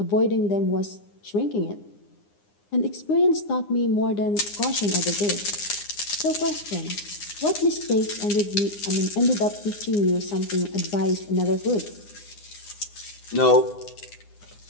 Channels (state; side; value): late; right; 9.8 ms